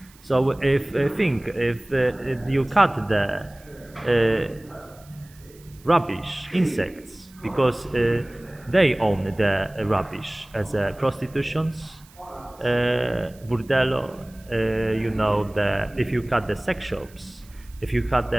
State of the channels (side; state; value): right; noise; hiss, 26 dB below the sound